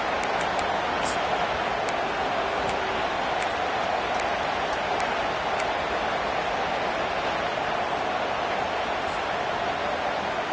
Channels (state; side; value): identical; both; correlation 1.00